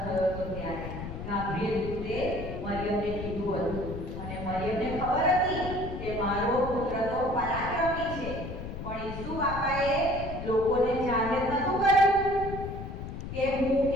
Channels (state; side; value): noise; left; rumble, 8 dB below the sound